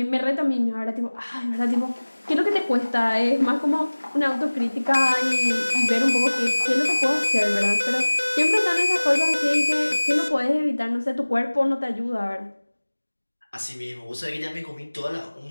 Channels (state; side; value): inverted; both; correlation -1.00